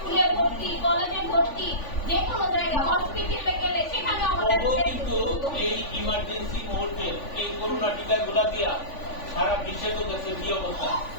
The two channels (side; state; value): right; late; 3.5 ms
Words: ভর্তি, কলেজে ভর্তি, যে কোনো জায়গায় হসপিটালে গেলে সেখানে আমাদের কিন্তু এই ইমার্জেন্সি মুহূর্তে এই করোনা টিকাগুলো দিয়া সারা বিশ্বে তো দেশের কি অবস্থা,